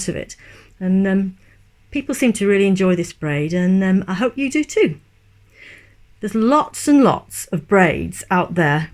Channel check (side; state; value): both; identical; correlation 1.00